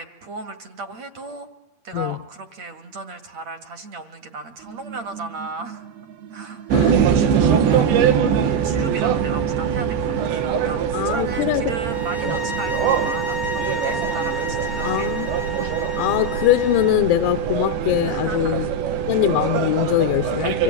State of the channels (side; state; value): left; late; 8.6 ms